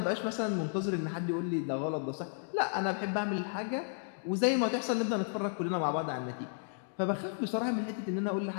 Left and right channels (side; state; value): right; silent; digital silence